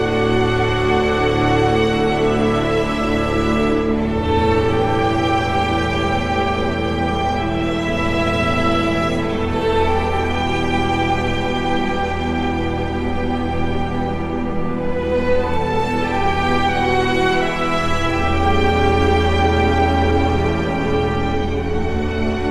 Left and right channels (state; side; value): noise; right; hum, 29 dB below the sound